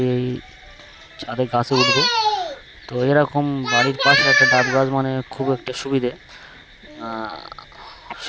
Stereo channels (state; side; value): identical; both; correlation 1.00